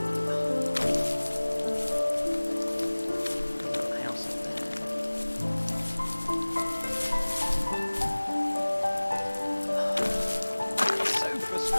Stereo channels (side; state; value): both; inverted; correlation -1.00